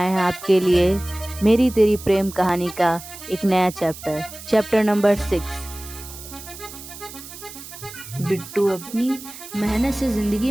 हैं आपके लिए मेरी तेरी प्रेम कहानी का एक नया चैप्टर नंबर 6। बिट्टू अपनी मेहनत से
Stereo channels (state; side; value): noise; right; hiss, 14 dB below the sound